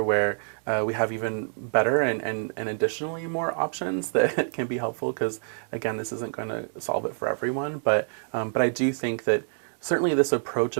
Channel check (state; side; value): silent; left; digital silence